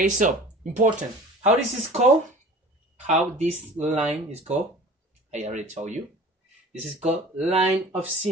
so important. How this is called? How this line is called? I already told you. This is called line of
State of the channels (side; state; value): both; normal; correlation 0.42